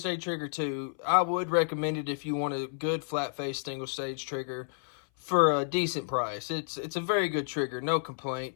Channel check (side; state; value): right; silent; 57 dB below the other